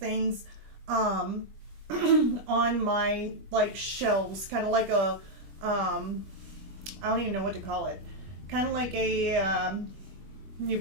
On my like shelves, kind of like a I don't even know what to call it, kind of like a you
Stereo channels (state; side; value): late; left; 20 ms